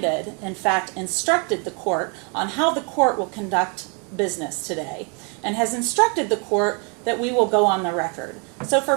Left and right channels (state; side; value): quieter; left; 35.5 dB